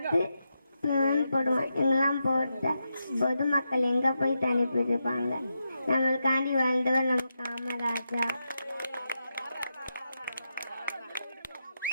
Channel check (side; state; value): both; inverted; correlation -0.86